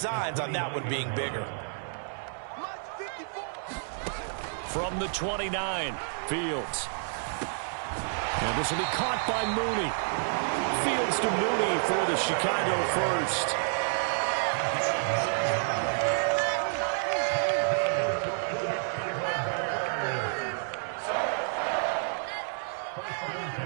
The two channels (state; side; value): silent; left; 58 dB below the other